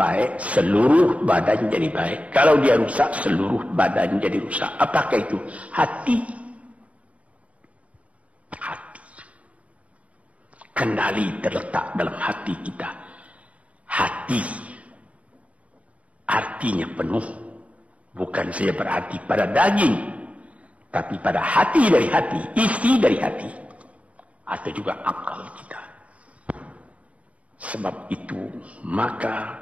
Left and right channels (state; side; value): late; left; 0.066 ms